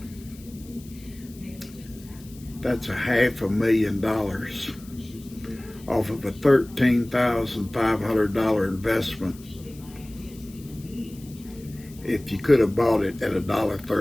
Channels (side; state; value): left; noise; hiss, 22 dB below the sound